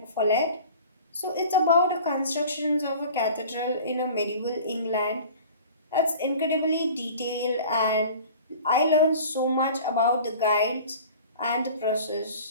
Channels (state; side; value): inverted; both; correlation -0.42